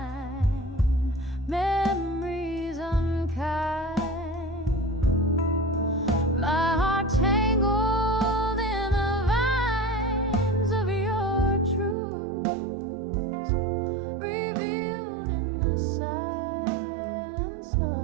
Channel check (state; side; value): drops out; left; at 12.0 s